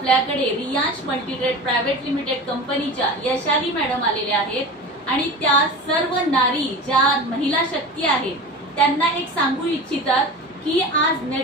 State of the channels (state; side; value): normal; both; correlation 0.31